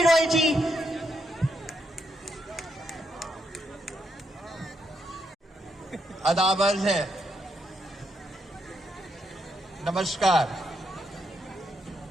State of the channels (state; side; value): normal; both; correlation 0.79